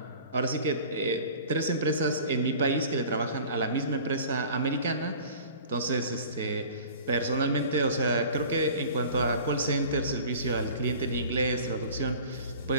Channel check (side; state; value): both; inverted; correlation -0.44